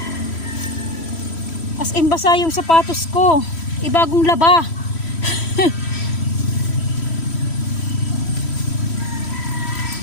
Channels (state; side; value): late; right; 3.1 ms